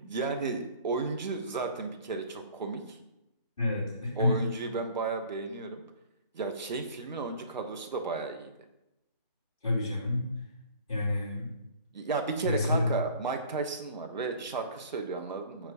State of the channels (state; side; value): inverted; both; correlation -0.49